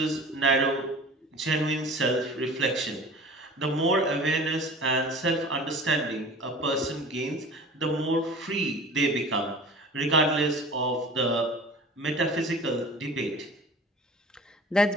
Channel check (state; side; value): normal; both; correlation 0.41